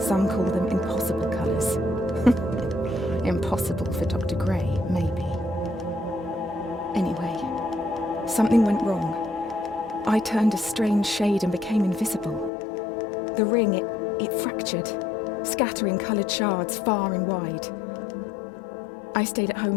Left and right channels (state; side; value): drops out; right; at 12.5 s